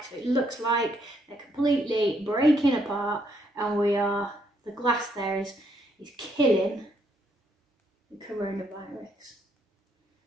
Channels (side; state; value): both; normal; correlation 0.73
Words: So it looks like they're completely breaking apart, and the glass there is killing the coronavirus.